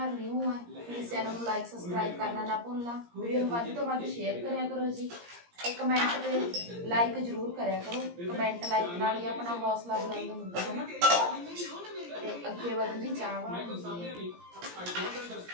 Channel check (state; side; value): late; left; 17 ms